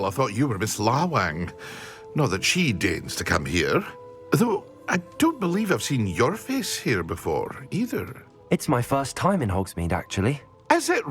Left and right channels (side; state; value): both; identical; correlation 1.00